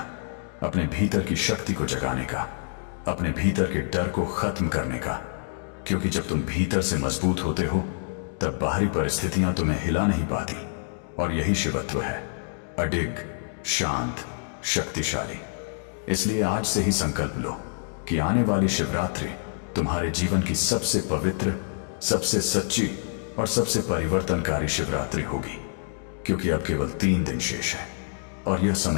अपने भीतर की शक्ति को जगाने का, अपने भीतर के डर को खत्म करने का। क्योंकि जब तुम भीतर से मजबूत होते हो, तब बाहरी परिस्थितियां तुम्हें हिला नहीं पाती। और यही शिवत्व है, अडिग, शांत, शक्तिशाली। इसलिए आज से ही संकल्प लो कि आने वाली शिवरात्रि तुम्हारे जीवन की सबसे पवित्र, सबसे सच्ची और सबसे परिवर्तनकारी शिवरात्रि होगी। क्योंकि अब केवल 3 दिन शेष है और यह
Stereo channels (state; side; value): silent; right; digital silence